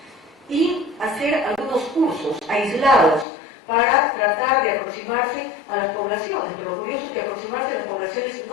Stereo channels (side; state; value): right; drops out; at 3.2 s